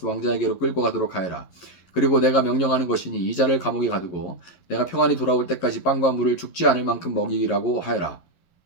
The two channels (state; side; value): late; right; 11 ms